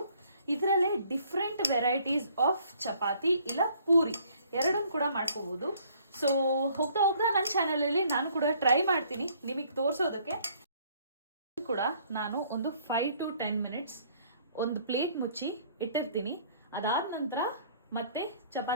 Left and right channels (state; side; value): inverted; both; correlation -0.60